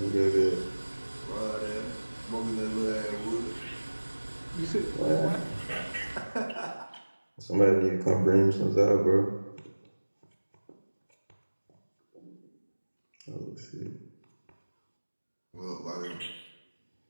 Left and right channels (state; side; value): inverted; both; correlation -1.00